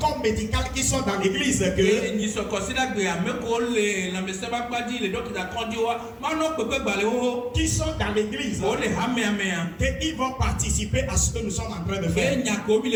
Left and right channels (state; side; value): identical; both; correlation 1.00